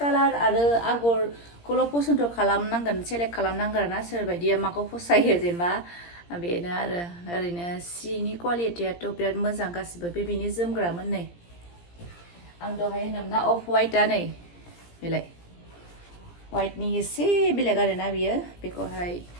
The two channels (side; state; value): right; late; 17 ms